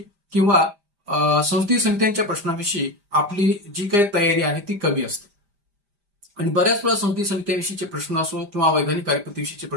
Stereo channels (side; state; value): left; late; 5.0 ms